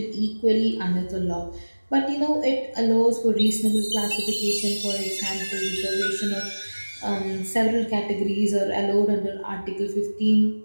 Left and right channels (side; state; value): both; inverted; correlation -1.00